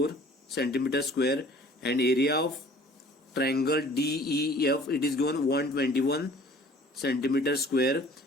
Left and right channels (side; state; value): both; normal; correlation 0.51